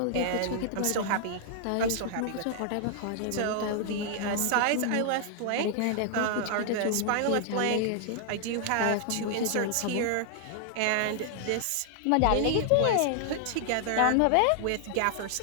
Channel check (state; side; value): different; both; correlation 0.00